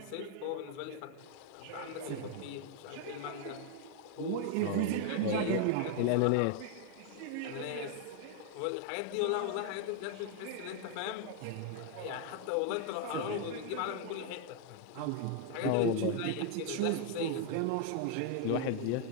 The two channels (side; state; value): both; different; correlation 0.00